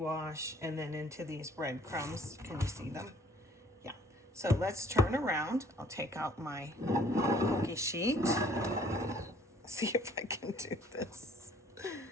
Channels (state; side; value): normal; both; correlation 0.57